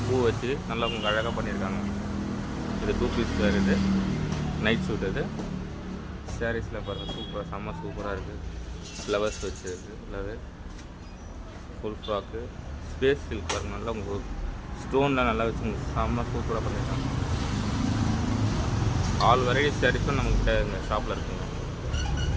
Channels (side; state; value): both; identical; correlation 1.00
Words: பூ வச்சு நல்லா உங்களுக்கு அழகாக பண்ணியிருக்காங்க. இது 2 பீஸ் வேர், இது நைட் சூட். இது சாரீஸில் பாருங்கள், செம்ம சூப்பராக இருக்குது. ஃப்ளவர்ஸ் வச்சுருக்கு, ஃபுல்லாகவே ஃபுல் ஃப்ராக்கு ஸ்பேஸ் சில்க் பாருங்கள். நல்லா உங்களுக்கு ஸ்டோன்லாம் நல்லா வச்சு உங்களுக்கு செம்ம சூப்பராக பண்ணியிருக்காங்க. ஆல் வெரைட்டி சாரீஸும் நம்மக்கிட்ட இந்த ஷாப்பில் இருக்குங்க.